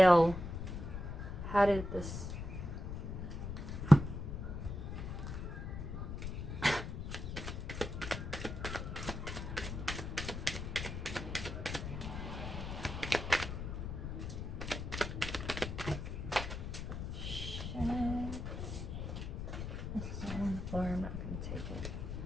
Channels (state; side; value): noise; left; rumble, 5 dB below the sound